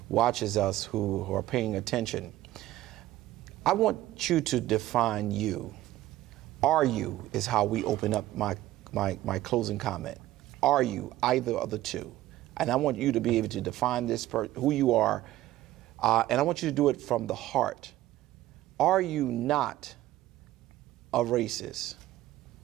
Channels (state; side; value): quieter; left; 15.2 dB